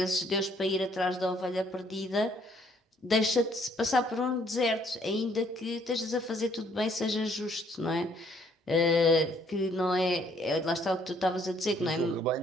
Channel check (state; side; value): normal; both; correlation 0.65